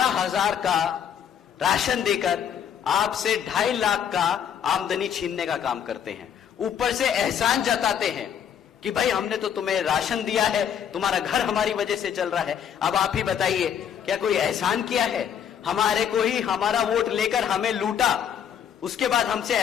का राशन देकर आपसे 2.5 लाख का आमदनी छीनने का काम करते हैं। ऊपर से एहसान जताते हैं कि भाई हमने तो तुम्हें राशन दिया है, तुम्हारा घर हमारी वजह से चल रहा है। अब आप ही बताइए, क्या कोई एहसान किया है? हमारे को ही हमारा वोट लेकर हमें लूटा, उसके बाद हमसे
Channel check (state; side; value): quieter; right; 8.6 dB